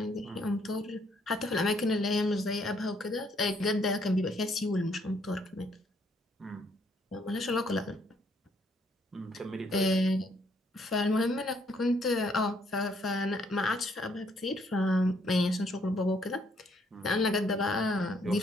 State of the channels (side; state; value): both; normal; correlation 0.68